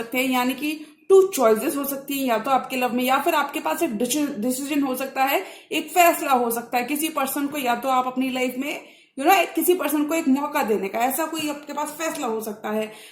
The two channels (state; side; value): identical; both; correlation 1.00